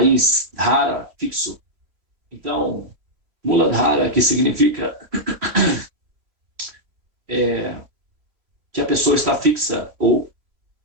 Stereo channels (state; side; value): late; left; 3.1 ms